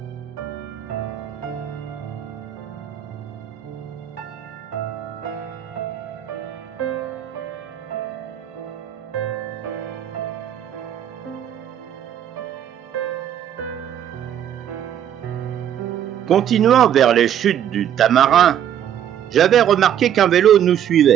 Continuant vers les chutes du Tamarin, j'avais remarqué qu'un vélo nous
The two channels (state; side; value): quieter; left; 10.1 dB